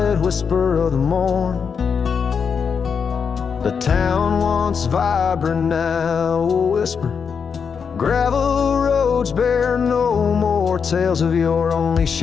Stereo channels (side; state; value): right; quieter; 6.3 dB